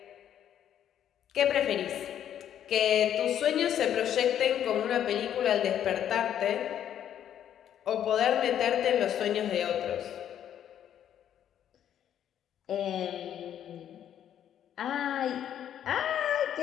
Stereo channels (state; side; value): quieter; right; 10.1 dB